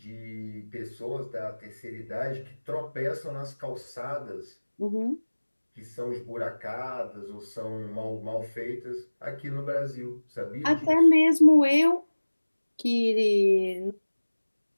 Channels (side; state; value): both; inverted; correlation -1.00